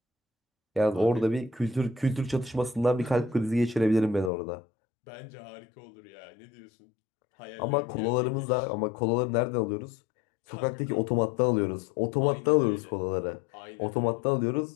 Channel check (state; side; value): drops out; right; at 4.3 s